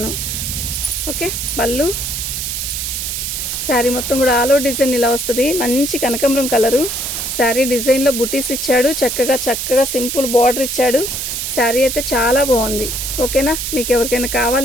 ఓకే, పళ్ళు శారీ మొత్తం కూడా ఆల్ ఓవర్ డిజైన్ ఇలా వస్తుంది. మంచి కనకాంబరం కలరు శారీ. డిజైన్లో బుటీస్ ఇచ్చాడు, చక్కగా సింపుల్ బార్డర్ ఇచ్చాడు. శారీ అయితే చాలా బాగుంది. ఓకేనా, మీకు ఎవరికైనా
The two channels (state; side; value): noise; right; hiss, 3 dB below the sound